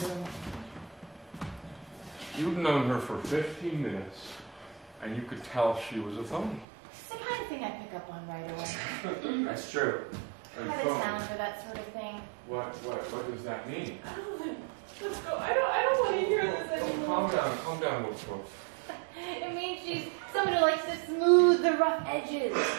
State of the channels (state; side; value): drops out; left; at 6.7 s